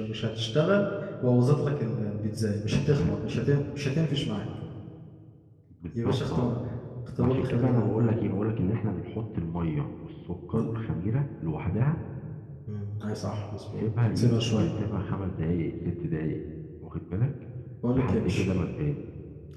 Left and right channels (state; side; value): identical; both; correlation 1.00